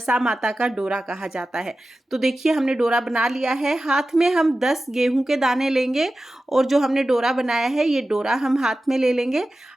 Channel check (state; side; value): normal; both; correlation 0.94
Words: माता का डोरा कहा जाता है। तो देखिए, हमने डोरा बना लिया है। हाथ में हम 10 गेहूं के दाने लेंगे और जो हमने डोरा बनाया है ये डोरा हम हाथ में ले लेंगे।